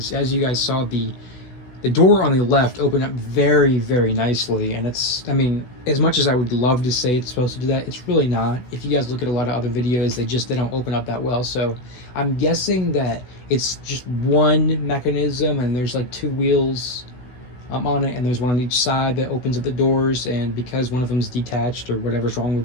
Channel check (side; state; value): right; late; 16 ms